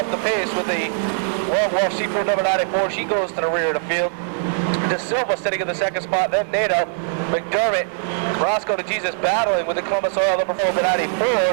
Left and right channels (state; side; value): silent; left; digital silence